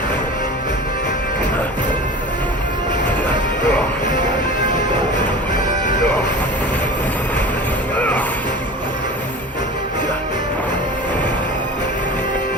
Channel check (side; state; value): both; normal; correlation 0.36